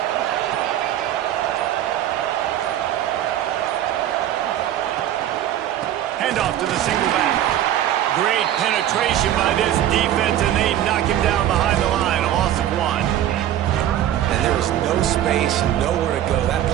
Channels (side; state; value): left; quieter; 11.8 dB